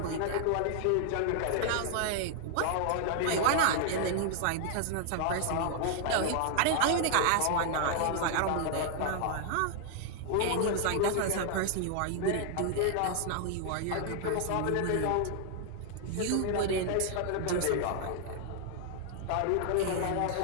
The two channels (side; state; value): both; different; correlation 0.00